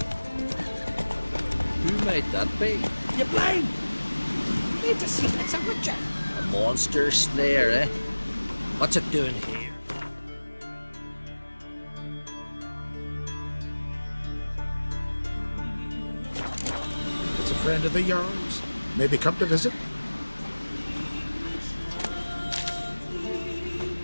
Who might that be? You blind! Need to see it's a witcher. A monster slayer, eh? What's it doing here? It's a friend of the Jarl's. Maybe come to visit.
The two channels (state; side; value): inverted; both; correlation -1.00